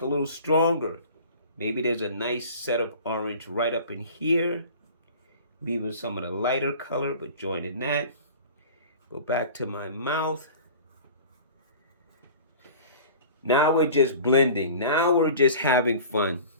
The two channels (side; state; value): both; inverted; correlation -0.41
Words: a little stronger. Maybe there's a nice set of orange right up in here, leaving some of the lighter color, but joining that. Go back to my mouth. Now we're just blending. Now we're just having fun.